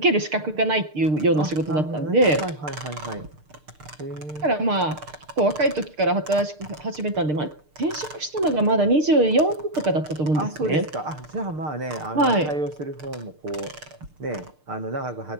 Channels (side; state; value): left; late; 6.6 ms